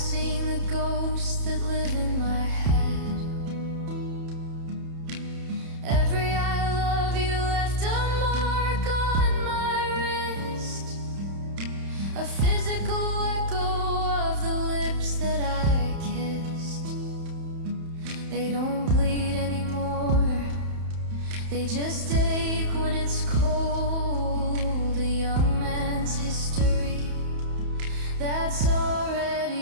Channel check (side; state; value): left; late; 31 ms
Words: the ghosts that live in my head. Every I love you left a mark on my wrist, a physical echo of the lips that I kissed. They don't bleed anymore, they just ache when it's cold. A young man's history that's